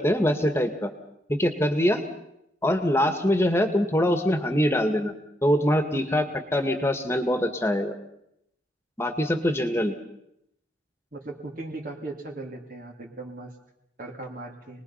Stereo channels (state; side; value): normal; both; correlation 0.78